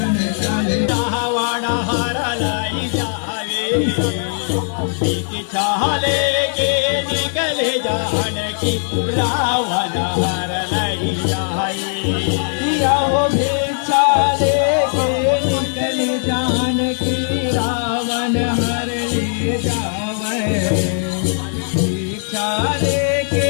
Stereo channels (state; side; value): silent; right; 67 dB below the other